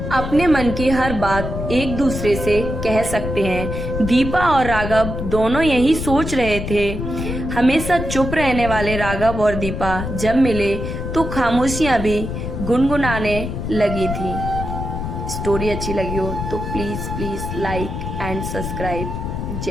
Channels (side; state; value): left; noise; rumble, 5 dB below the sound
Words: अपने मन की हर बात एक दूसरे से कह सकते हैं। दीपा और राघव दोनों यही सोच रहे थे। हमेशा चुप रहने वाले राघव और दीपा जब मिले तो खामोशियां भी गुनगुनाने लगी थी। स्टोरी अच्छी लगी हो तो प्लीज लाइक एंड सब्सक्राइब।